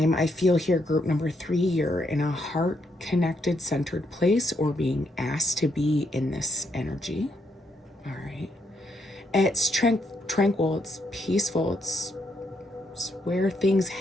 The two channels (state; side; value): normal; both; correlation 0.77